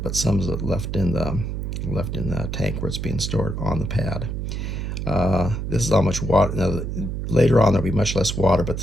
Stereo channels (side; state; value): right; noise; hum, 3 dB below the sound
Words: but some is left in the tank where it's being stored on the pad. This is how much water. Now, later on there'll be much less water, but